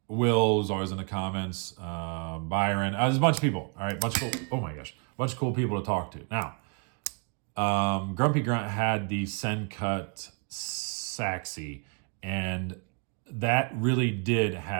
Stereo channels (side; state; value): left; quieter; 38.8 dB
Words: Will was always in the comments, Byron, there's a bunch of people, all right, bunch of cool people to talk to. Now, Grumpy Grunt had the Sencut Saxy, and that really did